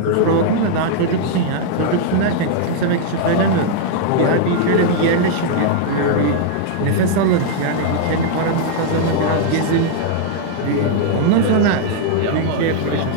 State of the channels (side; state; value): both; different; correlation -0.01